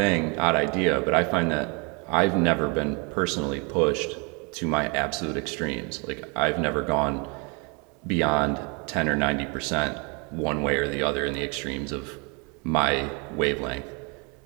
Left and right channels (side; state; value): left; quieter; 32.2 dB